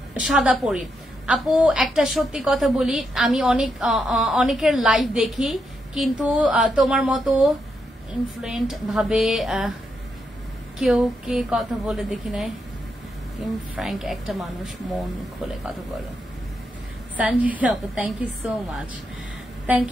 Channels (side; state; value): both; normal; correlation 0.81